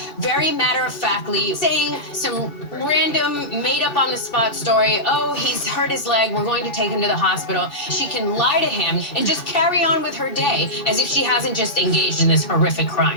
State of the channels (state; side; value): late; right; 2.7 ms